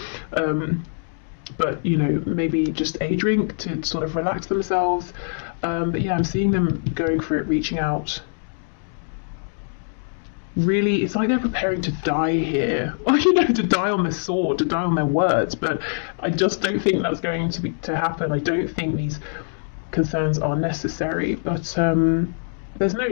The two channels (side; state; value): right; silent; 63 dB below the other